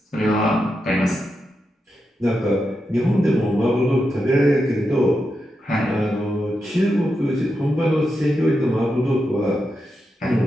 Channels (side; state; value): both; normal; correlation 0.87